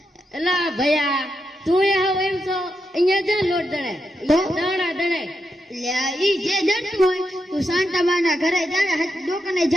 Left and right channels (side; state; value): both; normal; correlation 0.84